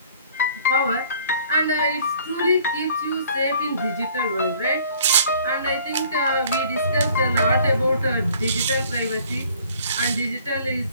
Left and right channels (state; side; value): inverted; both; correlation -0.55